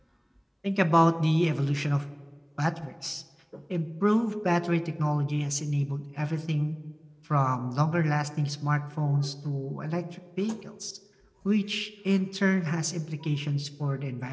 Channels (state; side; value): identical; both; correlation 1.00